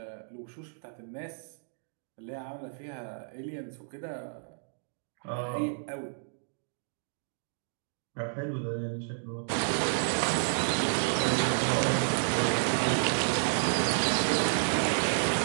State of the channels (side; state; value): left; silent; digital silence